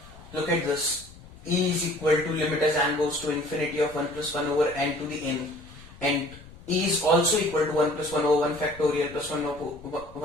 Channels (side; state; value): left; noise; rumble, 20 dB below the sound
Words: Look at this. E is equal to limit as n goes to infinity of 1 plus 1 over n to the n, and E is also equal to 1 plus 1 over 1 factorial plus 1